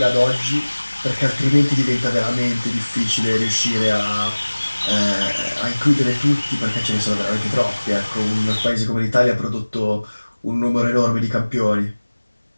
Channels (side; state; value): both; inverted; correlation -1.00